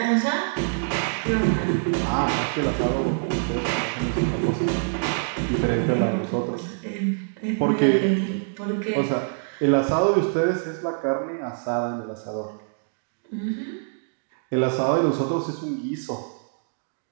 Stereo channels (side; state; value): left; silent; digital silence